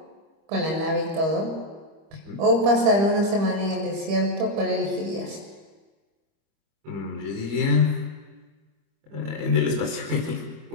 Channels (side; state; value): left; late; 25 ms